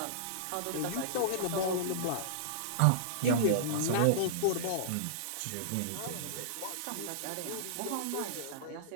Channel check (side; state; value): both; different; correlation -0.02